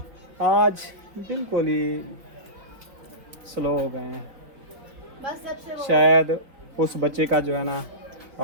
आज बिल्कुल ही स्लो हो गए हैं। बस जब से शायद उस बच्चे का जो है ना बस जब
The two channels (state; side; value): late; left; 3.8 ms